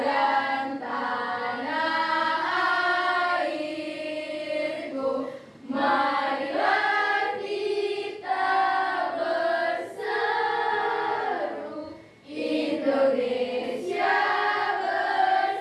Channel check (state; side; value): identical; both; correlation 1.00